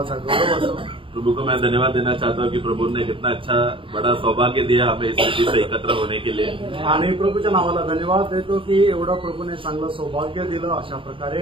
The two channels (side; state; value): left; late; 0.25 ms